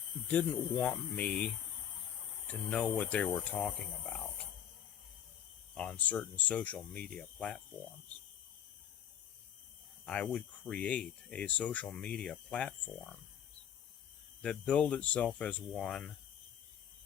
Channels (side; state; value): right; quieter; 9.4 dB